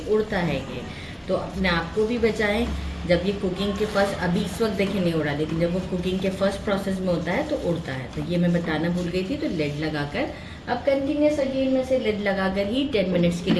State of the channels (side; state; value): both; identical; correlation 1.00